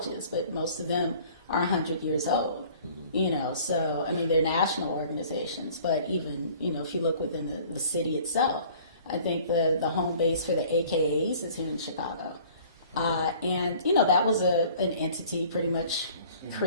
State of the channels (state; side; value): inverted; both; correlation -0.51